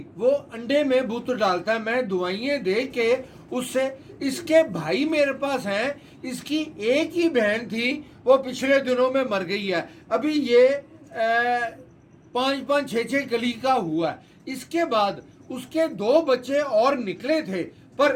وہ انڈے میں بت ڈالتا ہے میں دوائیں دے کے اس سے اس کے بھائی میرے پاس ہیں اس کی ایک ہی بہن تھی وہ پچھلے دنوں میں مر گئی ہے ابھی یہ 5-6 کلی کا ہوا ہے اس کے بعد اس کے 2 بچے اور نکلے تھے پر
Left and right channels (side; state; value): both; identical; correlation 1.00